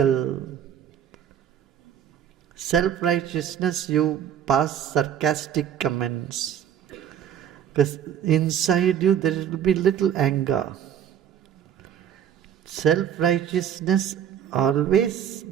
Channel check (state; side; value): quieter; left; 9.3 dB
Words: Self-righteousness, you pass sarcastic comments. Because inside you there will be little anger. Self-righteousness always